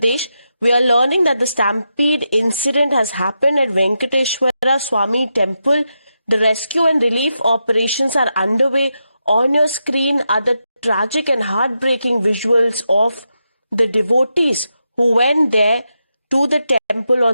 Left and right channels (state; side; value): inverted; both; correlation -0.86